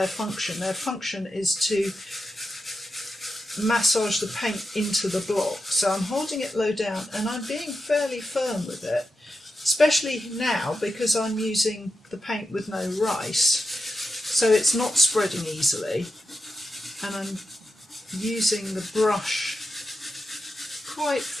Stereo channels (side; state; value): both; normal; correlation 0.88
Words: function. Their function is to massage the paint into the block. So I'm holding it low down and I'm being fairly firm with it, especially now because I'm using the paint with no rice, so it's not spreading easily, and I'm using the brush quite